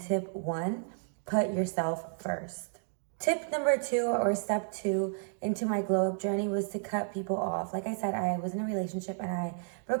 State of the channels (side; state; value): left; silent; digital silence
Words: 1, put yourself first. Tip number 2, or step 2 into my glow up journey, was to cut people off. Like I said, I was in a relationship and I